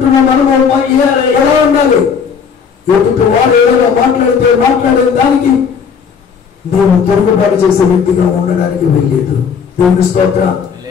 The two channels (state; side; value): quieter; right; 6.5 dB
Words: మనము ఎలా ఉండాలి? ఎదుటి వారు ఏదైనా మాట్లాడే దానికి నేను తిరుగుబాటు చేసే వ్యక్తిగా ఉండడానికి వెళ్ళలేదు. దేవుని స్తోత్రం.